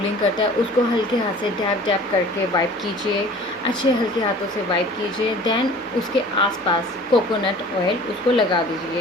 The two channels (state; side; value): normal; both; correlation 0.46